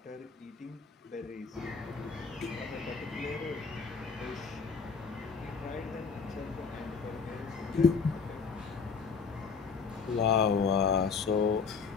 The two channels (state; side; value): quieter; right; 5.4 dB